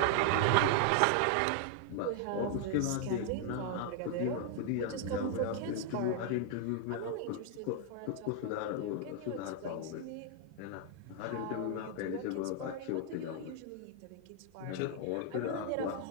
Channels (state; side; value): different; both; correlation 0.00